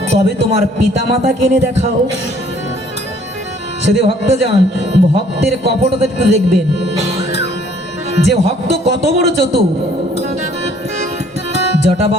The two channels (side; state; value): both; normal; correlation 0.59